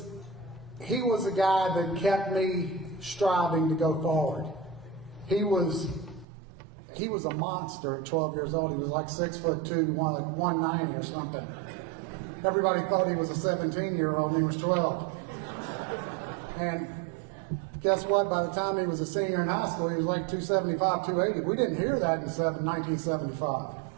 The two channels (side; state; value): left; drops out; at 6.2 s